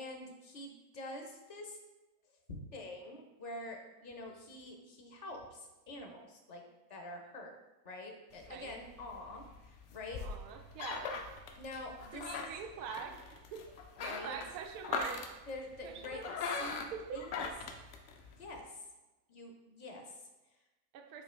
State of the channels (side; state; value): left; late; 3.4 ms